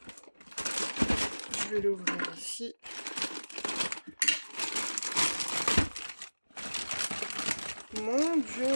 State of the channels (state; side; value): inverted; both; correlation -1.00